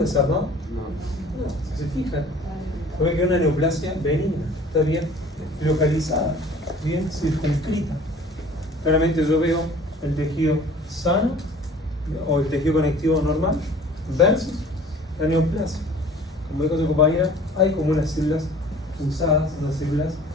No, si se fijan, ve que es una neoplasia benigna, está bien localizada, bien circunscrita. Claramente yo veo el tejido sano o el tejido conectivo normal versus la neoplasia. Como dijo su compañera, hay como unas células fusadas, unas células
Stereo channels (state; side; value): normal; both; correlation 0.48